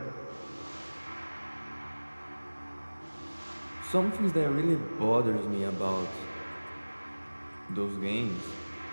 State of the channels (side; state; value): both; inverted; correlation -1.00